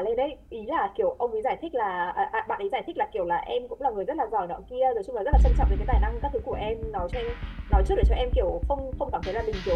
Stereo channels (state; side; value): identical; both; correlation 1.00